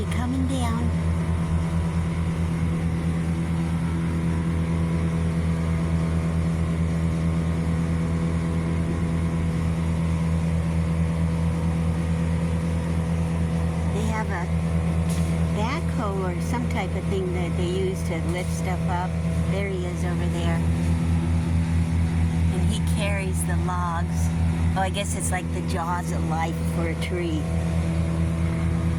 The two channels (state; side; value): identical; both; correlation 1.00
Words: coming down. They have a backhoe or some type of thing that they use to lift stuff up. There he is over there. And he carries the logs. Oh, I guess it's like the jaws of life for a tree.